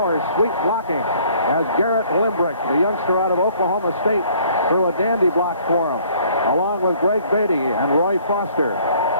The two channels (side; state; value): both; inverted; correlation -0.58